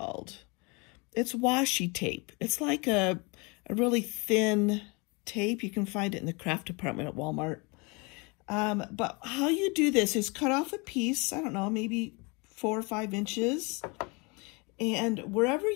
It's washi tape. It's like a really thin tape. You can find it in the craft department at Walmart. But how you do this is cut off a piece, I don't know, maybe 4 or 5 inches. And wherever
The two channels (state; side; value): quieter; right; 29.1 dB